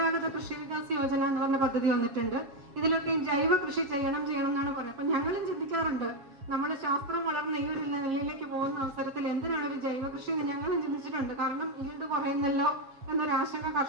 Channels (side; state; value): left; late; 7.3 ms